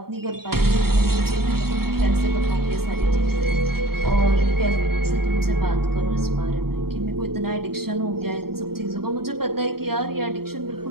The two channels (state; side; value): late; left; 0.94 ms